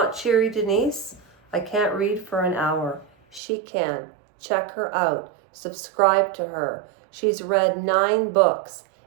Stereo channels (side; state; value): left; drops out; at 3.4 s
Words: Cheery Denise. I can't read for an hour. She can. Check her out. Subscribe to her. She's read 9 books.